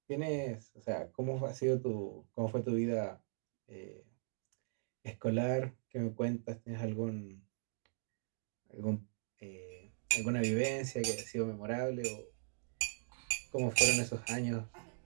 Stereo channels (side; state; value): left; silent; digital silence